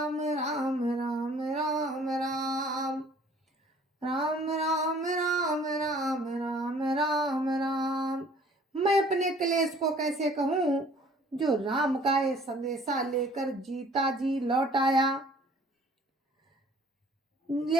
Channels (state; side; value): normal; both; correlation 0.54